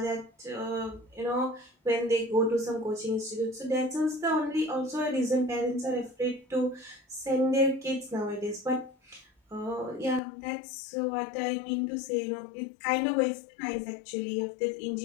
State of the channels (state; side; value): drops out; right; at 10.2 s